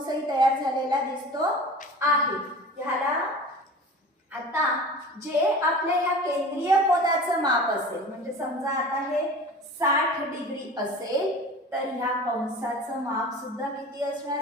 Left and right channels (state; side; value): normal; both; correlation 0.38